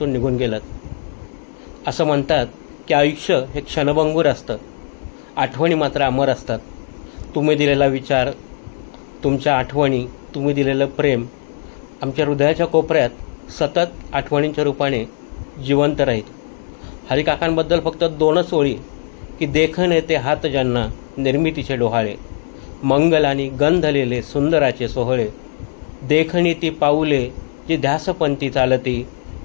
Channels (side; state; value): right; silent; digital silence